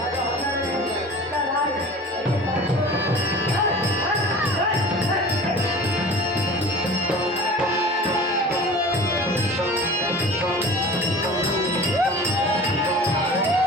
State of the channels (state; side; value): normal; both; correlation 0.40